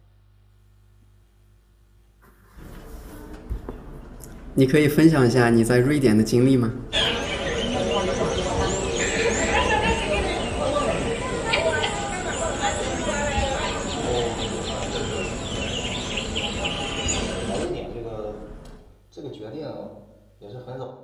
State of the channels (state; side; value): identical; both; correlation 1.00